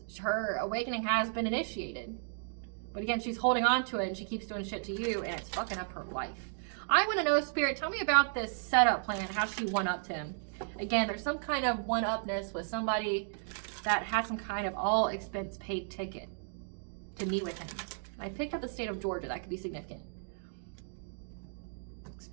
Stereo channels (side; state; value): left; silent; digital silence